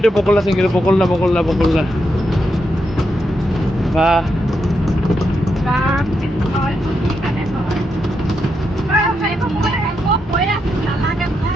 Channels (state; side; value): normal; both; correlation 0.83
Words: বকুল আছে কিন্তু বকুল না বাহ